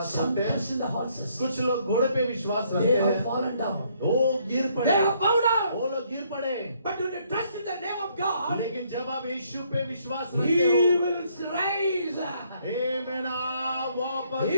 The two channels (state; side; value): inverted; both; correlation -0.68